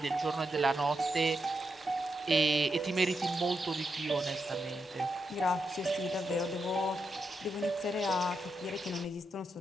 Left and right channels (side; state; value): both; normal; correlation 0.84